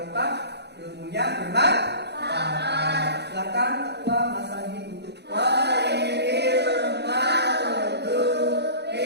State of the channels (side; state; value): left; late; 0.49 ms